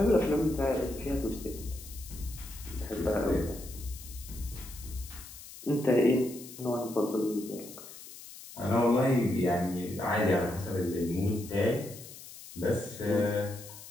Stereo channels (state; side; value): noise; left; hiss, 15 dB below the sound